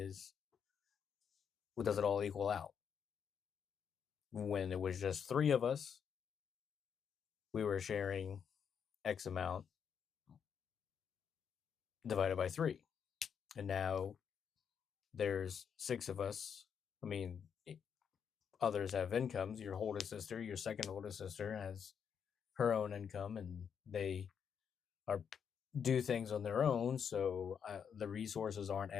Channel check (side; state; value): right; quieter; 7.4 dB